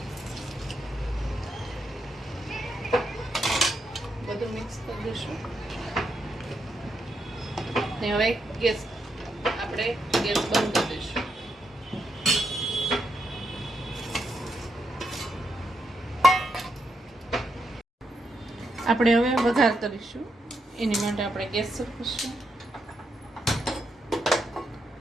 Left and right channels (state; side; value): normal; both; correlation 0.82